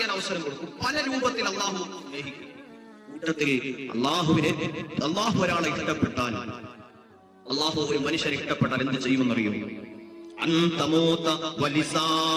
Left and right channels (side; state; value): both; identical; correlation 1.00